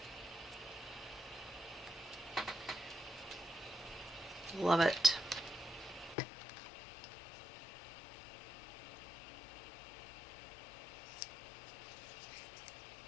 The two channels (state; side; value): drops out; right; at 6.2 s